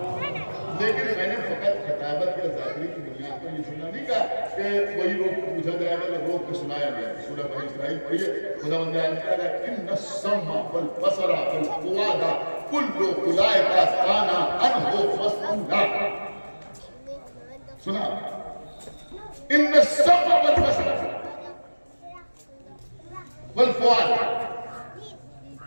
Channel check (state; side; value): inverted; both; correlation -1.00